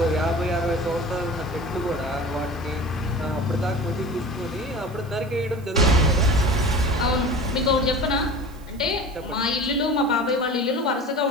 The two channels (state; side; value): noise; right; hiss, 25 dB below the sound